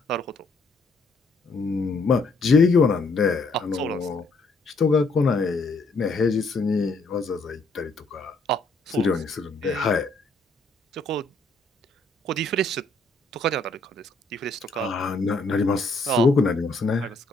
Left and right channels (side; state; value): right; quieter; 3.1 dB